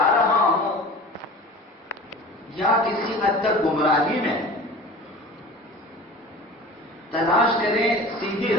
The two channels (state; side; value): normal; both; correlation 0.38